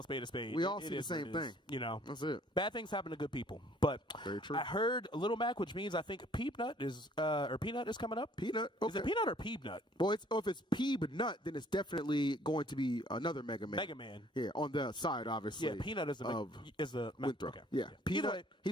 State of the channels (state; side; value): normal; both; correlation 0.59